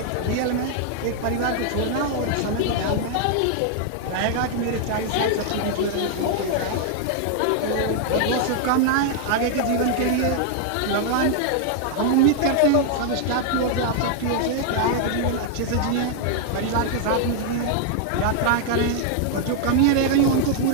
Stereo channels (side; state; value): both; different; correlation 0.00